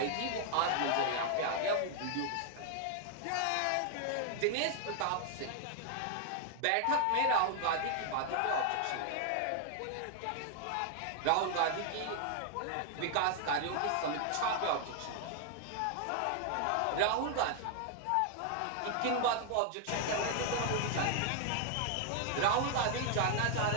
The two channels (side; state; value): both; different; correlation 0.00